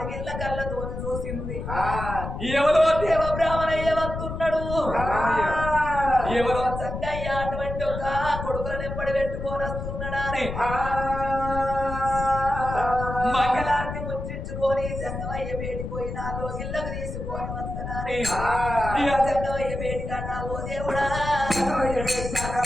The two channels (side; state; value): left; noise; rumble, 6 dB below the sound